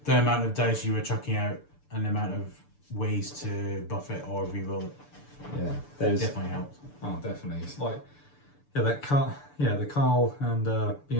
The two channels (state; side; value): late; right; 6.9 ms